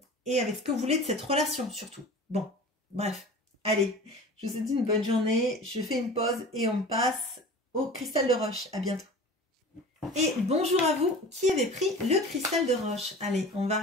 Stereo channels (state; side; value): normal; both; correlation 0.38